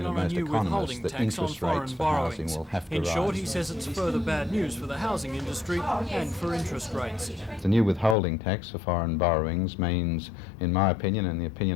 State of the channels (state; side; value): drops out; right; at 8.2 s